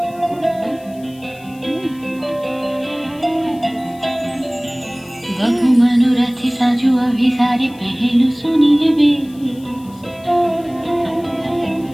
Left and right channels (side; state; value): left; noise; hiss, 26 dB below the sound